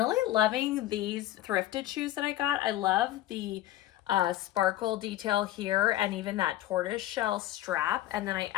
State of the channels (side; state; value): right; quieter; 14.2 dB